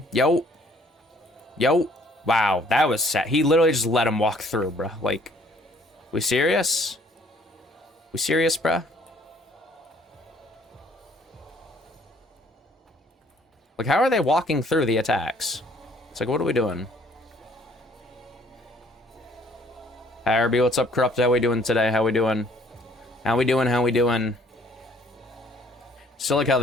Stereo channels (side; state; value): both; normal; correlation 0.60